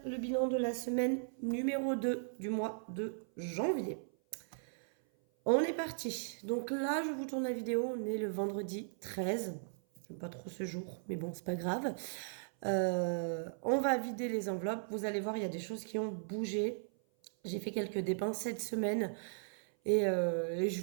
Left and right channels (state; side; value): silent; left; 53 dB below the other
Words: le bilan de la semaine numéro 2 du mois de janvier. On est parti. Donc là, je vous tourne la vidéo, on est le vendredi 13. J'aime pas trop ce jour, mais bon, c'est pas grave. On va vider les enveloppes. Vous allez voir, il y a des choses qui ont bougé. J'ai fait quelques dépenses cette semaine et je